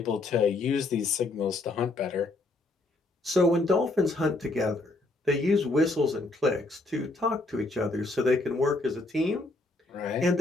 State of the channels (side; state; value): right; quieter; 3.0 dB